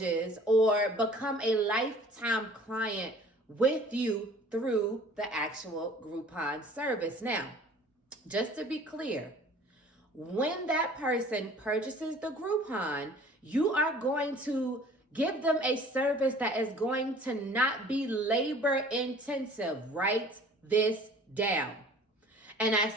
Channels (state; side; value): normal; both; correlation 0.49